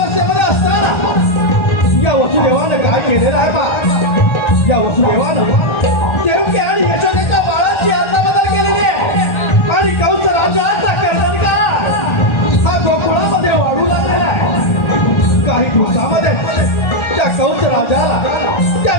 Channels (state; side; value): late; right; 1.4 ms